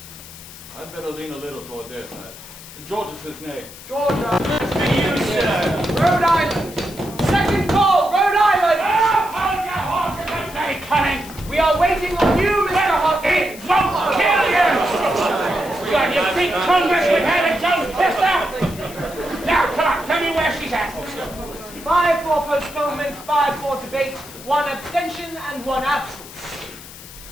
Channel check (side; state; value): left; noise; hiss, 16 dB below the sound